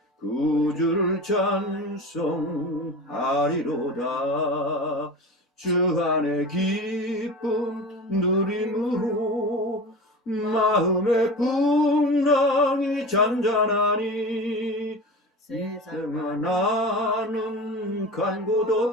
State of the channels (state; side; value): normal; both; correlation 0.31